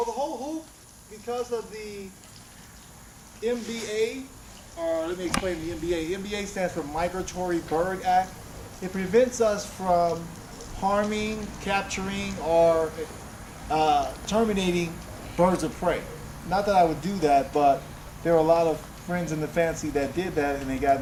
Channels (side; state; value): both; identical; correlation 1.00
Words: the whole hoop, because of the MBA, or let me explain the MBA. MBA stands for Migratory Bird Act. It prevents us from harming, capturing, or terminating birds of prey. Not that I would do that, but there are a lot of friends in the fancy that did that and they got